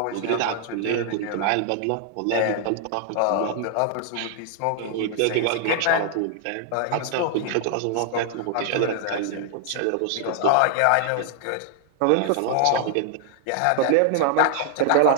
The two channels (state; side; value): different; both; correlation 0.00